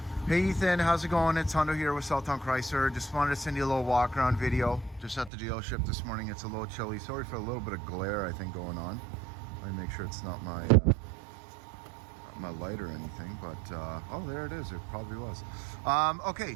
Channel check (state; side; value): drops out; left; at 5.3 s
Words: Hey Ethan, how's it going? It's Hundo here with Southtown Chrysler. Just wanted to send you a little walk around video. Just at the dealership this morning. It's a little chilly. Sorry for a little bit of glare I think going on. Let me make sure it's not my light or anything, but oh, there it is. It probably was. Okay,